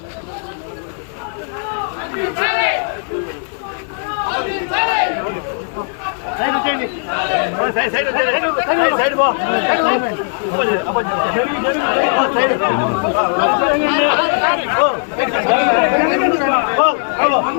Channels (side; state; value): right; silent; 60 dB below the other